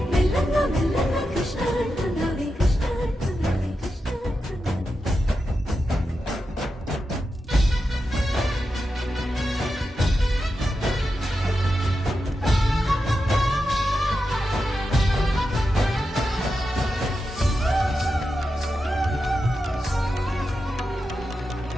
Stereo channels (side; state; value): both; normal; correlation 0.89